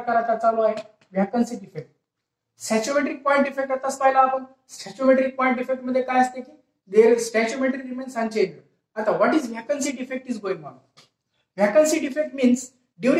आता चालू आहे vacancy defect. Stoichiometric point defect आताच पाहिला आपण. सॅच्युमेट्रिक पॉइंट डिफेक्ट मध्ये काय असते की देअर स्टॅच्युमेट्री रिमेन्स अनचेंज्ड. आता what is vacancy defect is going on. Vacancy defect means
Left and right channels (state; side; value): identical; both; correlation 1.00